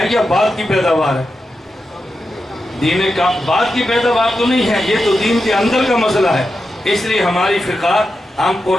یا بعد کی پیداوار ہے؟ بعد کی پیداوار تو نہیں ہے، یہ تو دین کے اندر کا مسئلہ ہے۔ اس لیے ہماری فقہ ہم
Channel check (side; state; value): both; normal; correlation 0.89